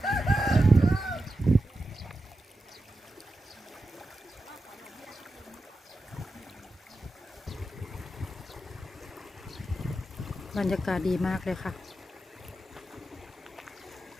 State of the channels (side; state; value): both; normal; correlation 0.90